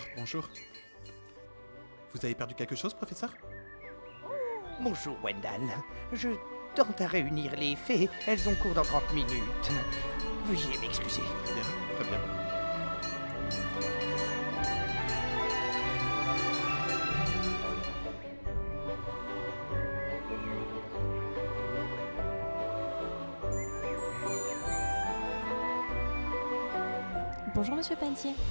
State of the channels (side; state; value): both; inverted; correlation -1.00